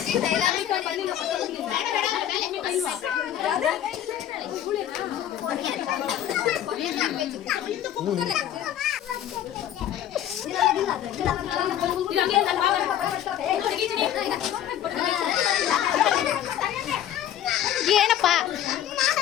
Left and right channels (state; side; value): quieter; right; 11.1 dB